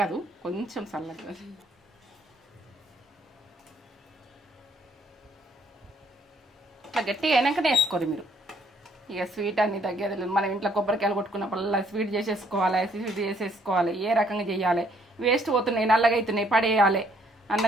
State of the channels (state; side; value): normal; both; correlation 0.66